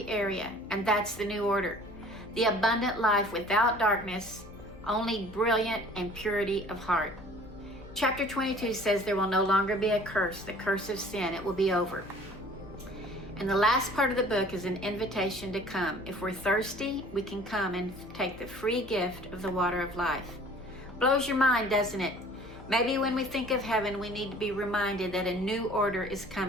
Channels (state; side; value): noise; left; hum, 17 dB below the sound